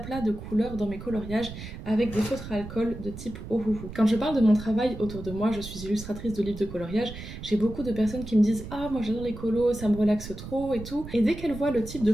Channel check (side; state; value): right; noise; rumble, 11 dB below the sound